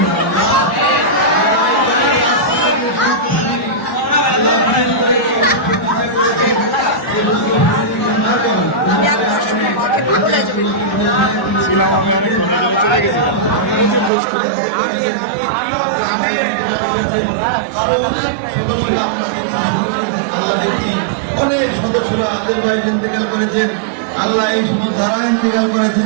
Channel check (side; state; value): left; drops out; at 14.1 s